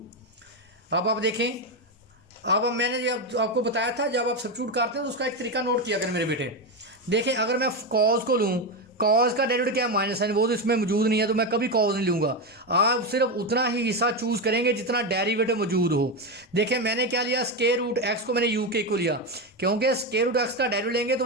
अब आप देखें, अब मैंने जब आपको बताया था जब आप सब्स्टिट्यूट करते हैं तो उसका एक तरीका नोट किया करें मेरे बेटे। देखें अगर मैं कॉज को लूँ, कॉज का डेरिवेटिव क्या है माइनस साइन, वो तो इसमें मौजूद नहीं है तो मैं कभी कॉज नहीं लूँगा। आप सिर्फ उतना ही हिस्सा चूज़ करेंगे जितना डेरिवेटिव मौजूद हो। देखें मैंने क्या लिया स्क्वायर रूट एक्स को मैंने यू के को लिया, क्योंकि स्क्वायर रूट एक्स का डेरिवेटिव लेंगे तो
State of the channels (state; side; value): normal; both; correlation 0.12